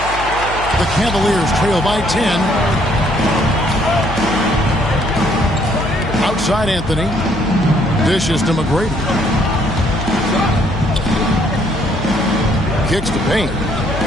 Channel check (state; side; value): noise; left; hum, 10 dB below the sound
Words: The Cavaliers trail by 10. Outside Anthony. Dishes to McGrady. Kicks to paint.